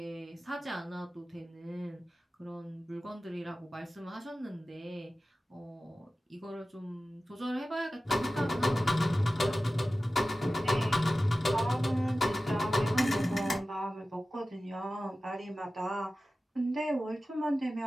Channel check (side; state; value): both; normal; correlation 0.95